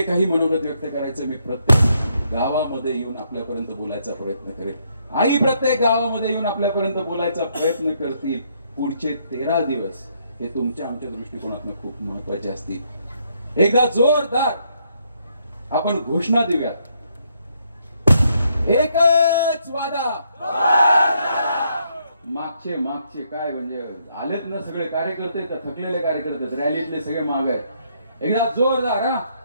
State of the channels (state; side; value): inverted; both; correlation -0.73